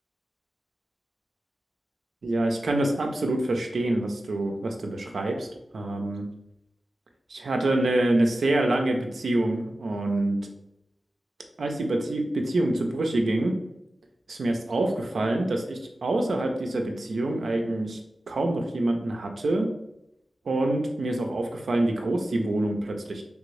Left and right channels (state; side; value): normal; both; correlation 0.94